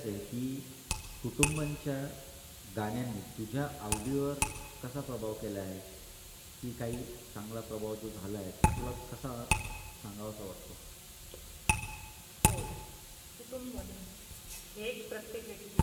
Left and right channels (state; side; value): identical; both; correlation 1.00